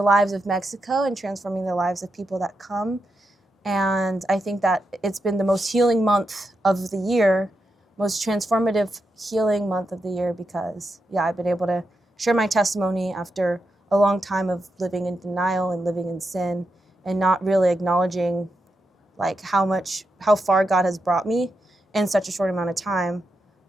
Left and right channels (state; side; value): normal; both; correlation 0.86